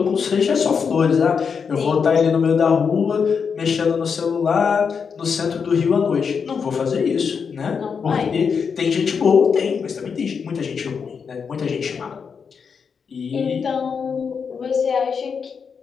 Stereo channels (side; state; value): right; quieter; 6.1 dB